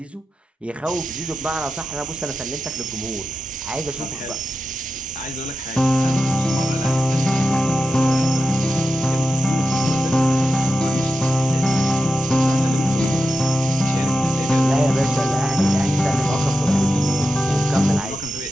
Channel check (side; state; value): both; normal; correlation 0.90